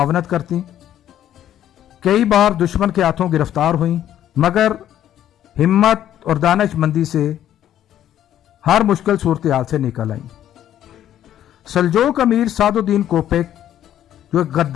کرتی، کئی بار دشمن کے ہاتھوں گرفتار ہوئیں، مگر ہمت اور دانش مندی سے ہر مشکل صورتحال سے نکل آئیں۔ سلجوق امیر سعد الدین کوپیک، جو ایک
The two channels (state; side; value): quieter; right; 11.3 dB